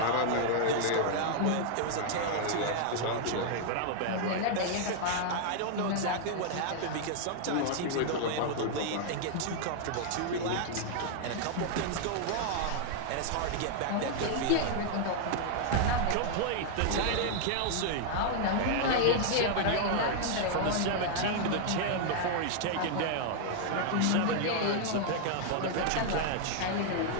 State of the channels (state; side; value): different; both; correlation -0.01